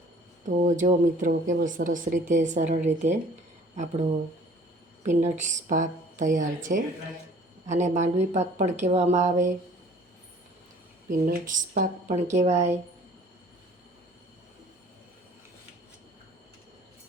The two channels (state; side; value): normal; both; correlation 0.52